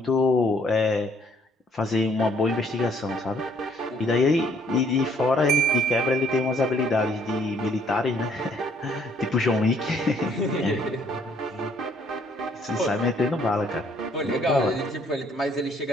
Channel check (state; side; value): normal; both; correlation 0.64